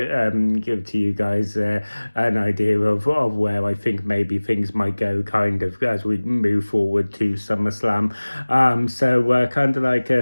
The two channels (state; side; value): inverted; both; correlation -1.00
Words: give to you guys an idea of where I think maybe things might go kind of as we move forward to SummerSlam. So kind of like